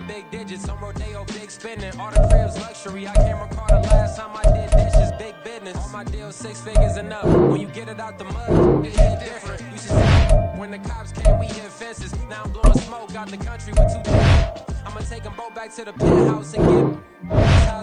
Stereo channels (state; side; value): identical; both; correlation 1.00